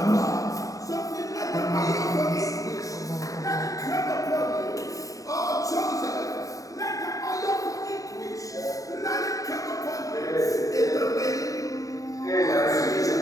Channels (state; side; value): late; right; 0.16 ms